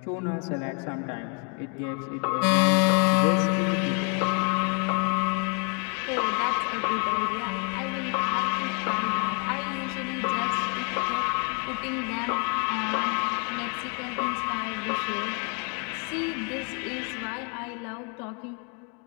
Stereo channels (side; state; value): right; quieter; 37.7 dB